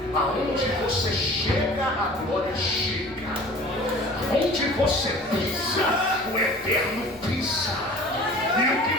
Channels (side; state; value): right; noise; rumble, 24 dB below the sound